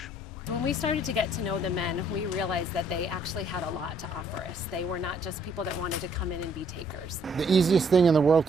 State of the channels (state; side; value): normal; both; correlation 0.65